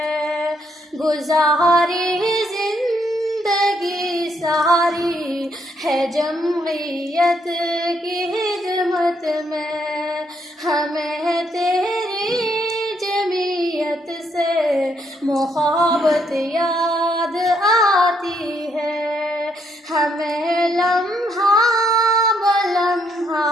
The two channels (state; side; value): normal; both; correlation 0.73